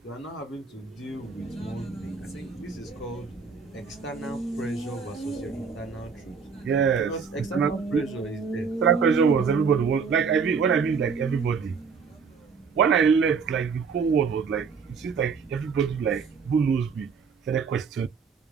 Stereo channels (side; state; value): left; quieter; 5.7 dB